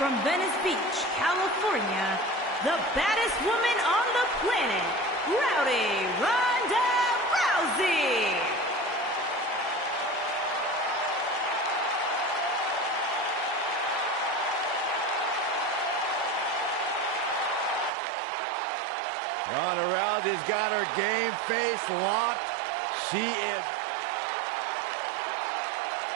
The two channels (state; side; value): drops out; left; at 17.9 s